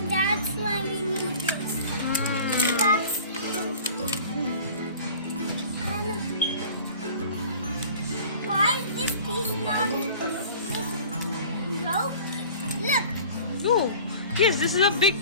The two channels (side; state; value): both; inverted; correlation -0.43